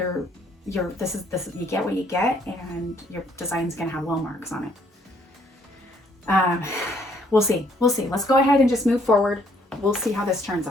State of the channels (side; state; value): both; normal; correlation 0.66